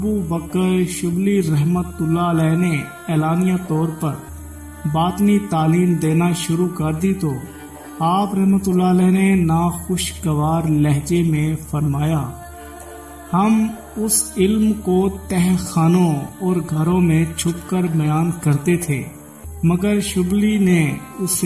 بکر شبلی رحمت اللہ علیہ نے اعلانیہ طور پر باطنی تعلیم دینا شروع کر دی تو آپ رحمت اللہ علیہ نے ناخوشگوار لہجے میں فرمایا، ہم اس علم کو تہ خانوں اور گھروں میں چھپ کر بیان کرتے تھے، مگر شبلی نے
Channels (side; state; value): both; identical; correlation 1.00